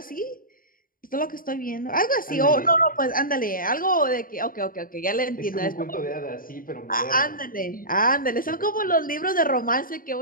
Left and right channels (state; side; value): late; right; 0.41 ms